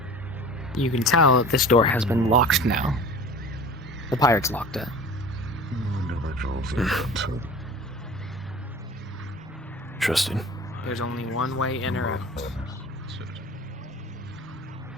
You can tell that this door has been locked now. The pirates locked it. Interesting. There's only one way in or out. certain.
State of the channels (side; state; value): both; normal; correlation 0.40